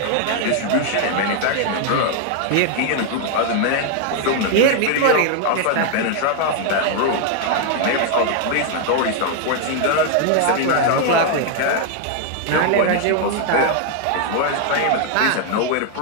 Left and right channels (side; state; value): both; different; correlation 0.00